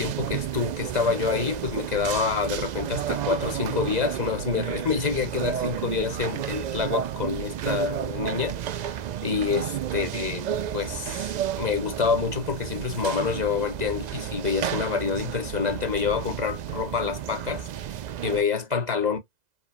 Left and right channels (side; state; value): left; late; 2.0 ms